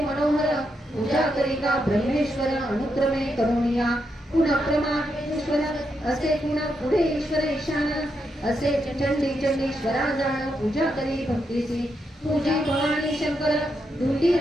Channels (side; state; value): both; normal; correlation 0.82